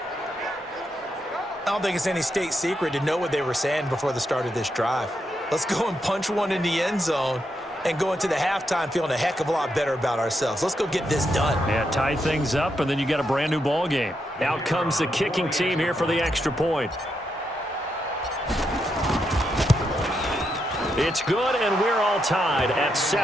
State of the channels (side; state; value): both; normal; correlation 0.82